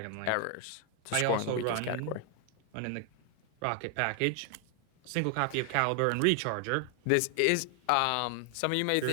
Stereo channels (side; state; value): both; different; correlation 0.00